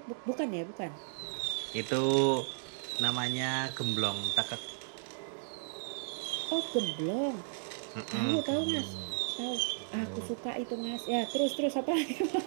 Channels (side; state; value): left; silent; digital silence